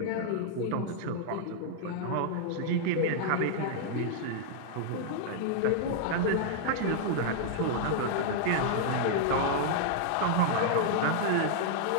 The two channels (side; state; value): both; different; correlation -0.01